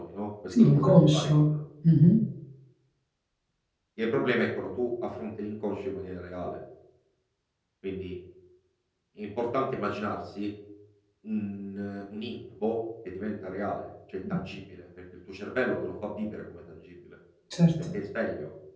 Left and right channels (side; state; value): both; identical; correlation 1.00